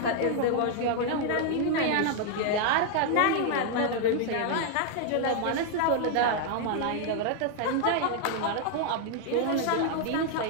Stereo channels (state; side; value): different; both; correlation 0.00